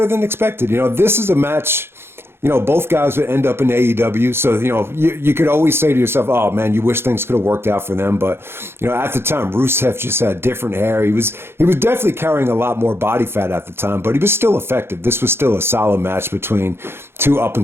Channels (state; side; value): late; left; 0.11 ms